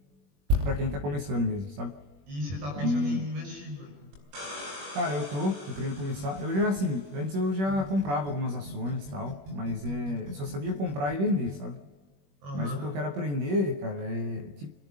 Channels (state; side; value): late; left; 21 ms